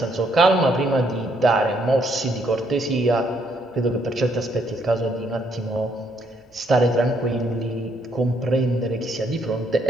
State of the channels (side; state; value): both; normal; correlation 0.71